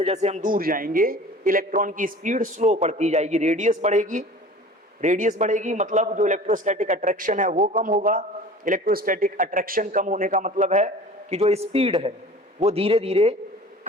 जैसे हम दूर जाएंगे इलेक्ट्रॉन की स्पीड स्लो बढ़ती जाएगी, रेडियस बढ़ेगी, रेडियस बढ़ेगी मतलब जो इलेक्ट्रोस्टैटिक अट्रैक्शन है वो कम होगा। इलेक्ट्रोस्टैटिक अट्रैक्शन कम होने का मतलब है कि जो स्पीड है वो धीरे धीरे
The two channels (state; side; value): normal; both; correlation 0.42